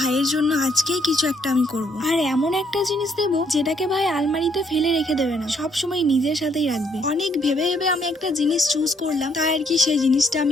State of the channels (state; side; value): normal; both; correlation 0.69